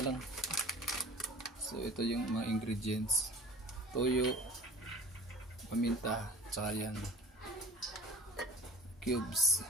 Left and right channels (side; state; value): both; normal; correlation 0.44